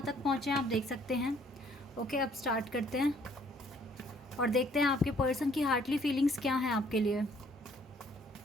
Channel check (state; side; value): normal; both; correlation 0.62